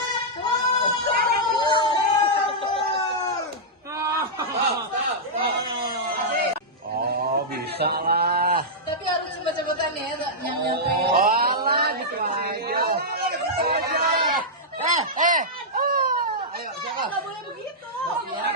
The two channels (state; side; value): normal; both; correlation -0.10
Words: Bisa lah. Tapi harus cepet-cepetan ya, nyampe. Walah, gitu aja. Ayo, siapa? Nggak boleh begitu.